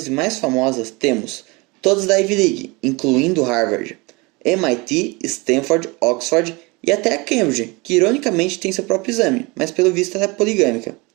e mais famosas temos todas da Ivy League, incluindo Harvard, MIT, Stanford, Oxford e até a Cambridge, que ironicamente tem seu próprio exame, mas pelo visto ela é poligâmica.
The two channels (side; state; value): left; quieter; 25.9 dB